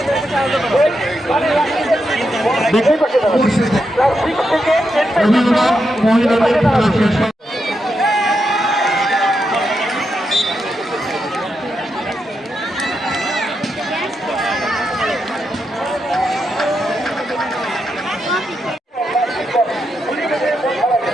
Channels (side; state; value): both; normal; correlation 0.84